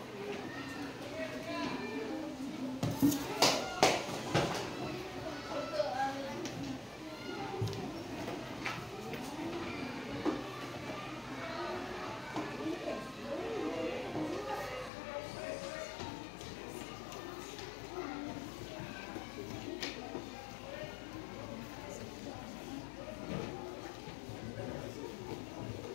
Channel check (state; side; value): drops out; right; at 14.9 s